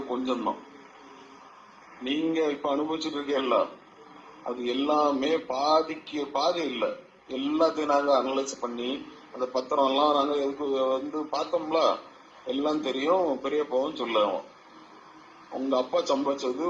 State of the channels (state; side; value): identical; both; correlation 1.00